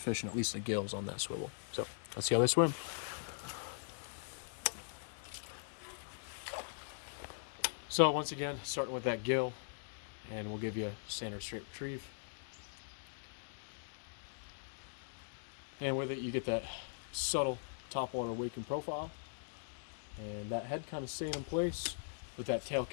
at least the gills on that swivel. So let's see how they swim. So once again, starting with that gill, and we'll give you a standard straight retrieve. And with it, you get that subtle topwater waking profile, and that head kind of staying in place with that tail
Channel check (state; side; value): silent; right; digital silence